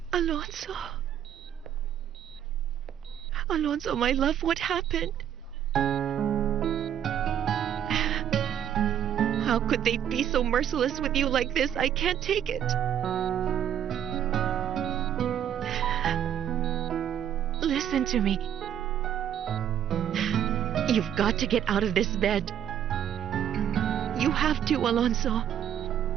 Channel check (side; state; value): left; quieter; 9.8 dB